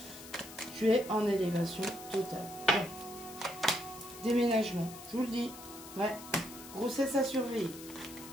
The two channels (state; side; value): noise; left; hiss, 15 dB below the sound